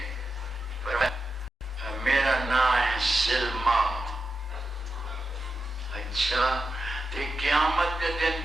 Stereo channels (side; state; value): both; normal; correlation 0.89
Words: میرا نام ہے سلمہ اچھا تے قیامت کے